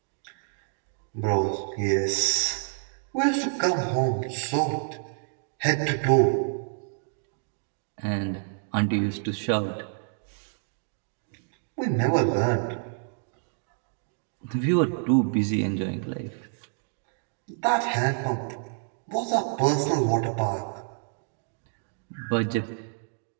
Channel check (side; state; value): left; silent; 59 dB below the other